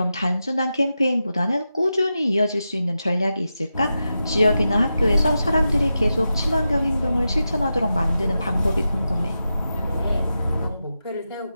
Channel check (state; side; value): inverted; both; correlation -0.90